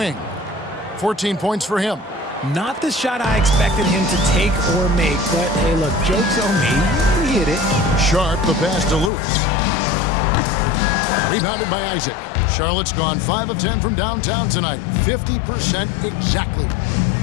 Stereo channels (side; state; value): right; drops out; at 9.1 s